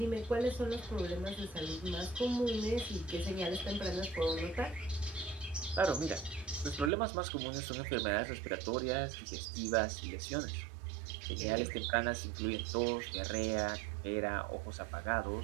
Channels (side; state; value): left; drops out; at 6.9 s